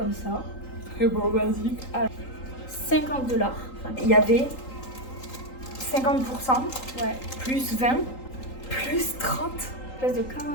ça, Très beau, basique. à 50 $. Enfin, Il y avait 50%, ouais, plus 20, plus 30. place de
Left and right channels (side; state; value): right; late; 3.8 ms